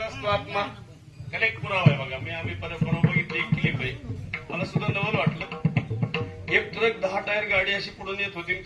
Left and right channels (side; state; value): both; identical; correlation 1.00